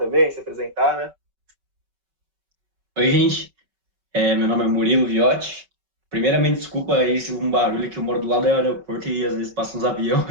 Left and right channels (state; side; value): late; left; 5.2 ms